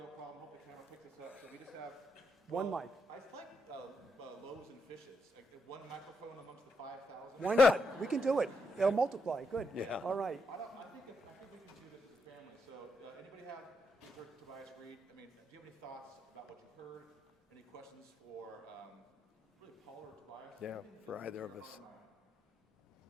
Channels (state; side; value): normal; both; correlation 0.80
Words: problem. Hope the camera picks this up. So we just have one mic. I like loaves and fishes. Like one microphone amongst the 5,000. Why not? We can do it. It'll multiply. Good. Yeah. All right. I think we can do this as a family. So anybody have Tobias Reed? I mean, do you have any thoughts about what you've heard? Any questions for really Paul or Tobias? Yeah, for either of us.